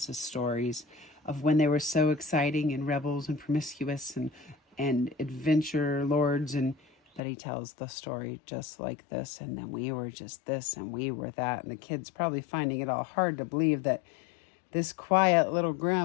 his stories of when they were so exciting and rebels and promiscuous and adventure lords, and that he tells the story just like this, and then we were just this and we were that. And the kid's probably finding it all hard to believe that this quiet little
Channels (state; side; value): drops out; right; at 7.2 s